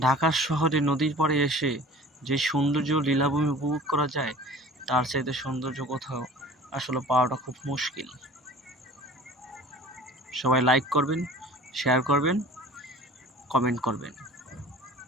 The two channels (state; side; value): normal; both; correlation 0.44